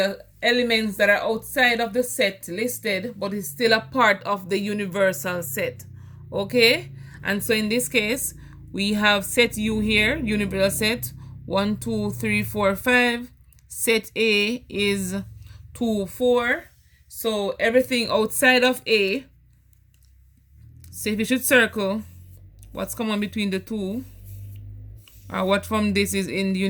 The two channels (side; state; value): both; identical; correlation 1.00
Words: elements that are outside of the set listed but is still a part of the universal set. Okay, and so in this case we have set U here, universal set 1, 2, 3, 4, 5. Set A is 2, 4. So everything outside of A, so if you should circle what's common between the two, or what from this is in the